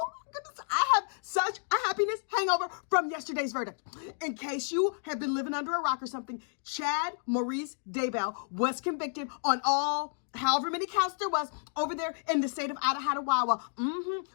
my goodness, I have such a happiness hangover from yesterday's verdict. In case you have been living under a rock or something, Chad Maurice Daybell was convicted on all however many counts there was over there in the state of Idaho,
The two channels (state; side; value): silent; right; digital silence